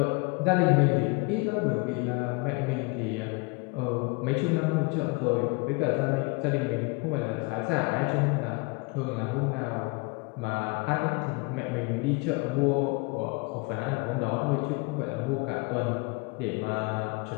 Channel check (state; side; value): quieter; right; 28.2 dB